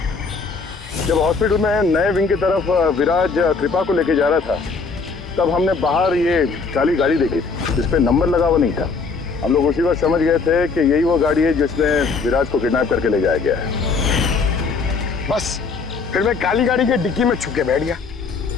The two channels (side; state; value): right; quieter; 4.7 dB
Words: जब हॉस्पिटल में नए विंग की तरफ विराज कृपा को लेके जा रहा था, तब हमने बाहर ये काली गाड़ी देखी थी जिसपे नंबर लगा हुआ नहीं था। हम लोग उसी वक्त समझ गए थे कि यही वो गाड़ी है जिसमें विराज को किडनैप करके ले जाया गया है। बस फिर मैं काली गाड़ी के डिक्की में छुप के बैठ गया